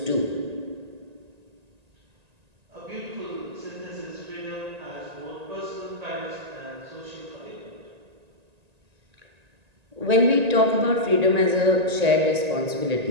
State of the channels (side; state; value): left; late; 1.9 ms